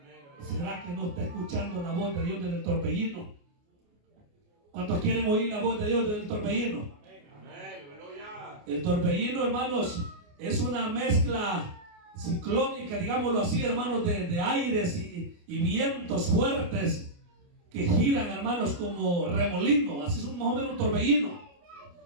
¿Será que no está escuchando la voz de Dios desde el torbellino? ¿Cuántos quieren oír la voz de Dios desde el torbellino? El torbellino, hermanos, es una mezcla ciclónica, digámoslo así, hermanos, de aires y vientos fuertes que giran, hermanos, como remolino. Así es más o menos un torbellino.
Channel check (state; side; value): late; left; 29 ms